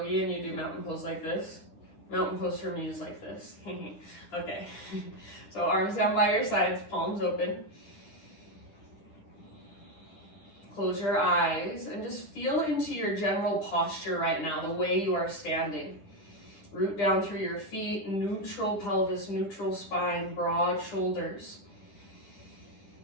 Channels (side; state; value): right; late; 10 ms